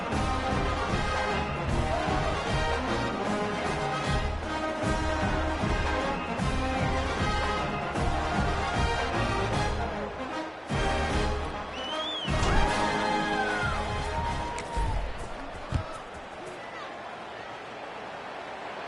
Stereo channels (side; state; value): both; identical; correlation 1.00